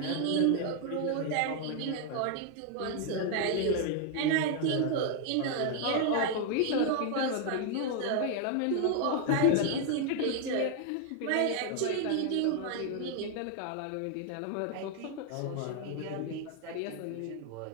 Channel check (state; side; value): different; both; correlation 0.00